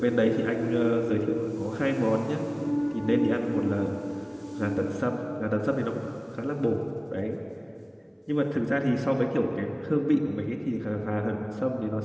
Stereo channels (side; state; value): both; identical; correlation 1.00